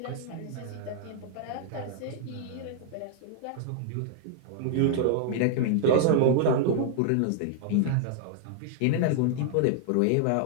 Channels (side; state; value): both; different; correlation 0.00